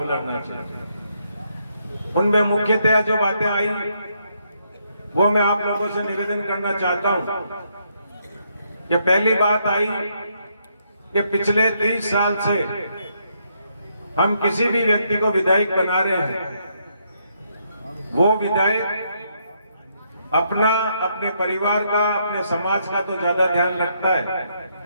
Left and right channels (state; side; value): inverted; both; correlation -0.75